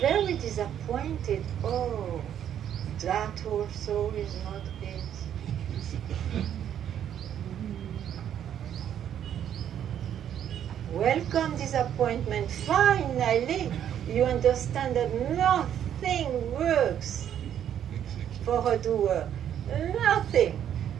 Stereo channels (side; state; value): left; quieter; 9.8 dB